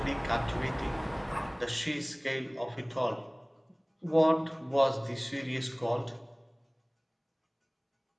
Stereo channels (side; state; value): both; identical; correlation 1.00